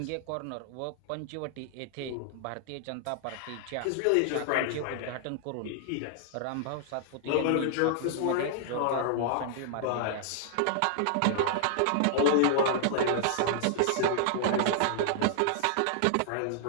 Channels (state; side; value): different; both; correlation -0.01